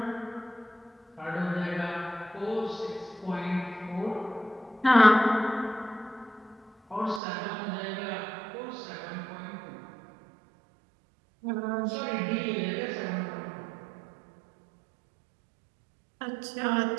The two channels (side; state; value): left; drops out; at 7.2 s